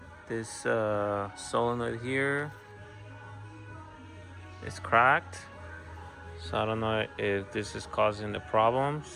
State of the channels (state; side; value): identical; both; correlation 1.00